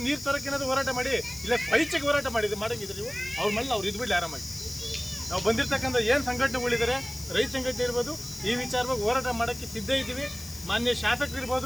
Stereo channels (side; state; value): left; noise; hiss, 13 dB below the sound